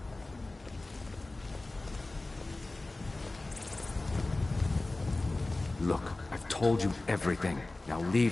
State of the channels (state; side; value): quieter; right; 3.0 dB